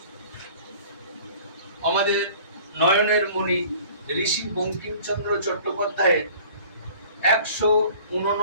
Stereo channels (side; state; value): both; inverted; correlation -0.49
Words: আমাদের নয়নের মণি ঋষি বঙ্কিমচন্দ্র চট্টোপাধ্যায়ের